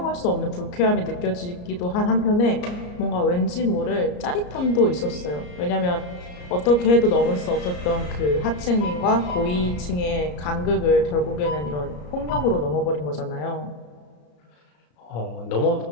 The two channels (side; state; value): right; late; 34 ms